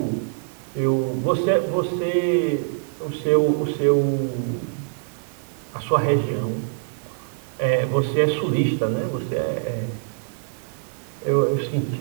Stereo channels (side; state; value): left; silent; digital silence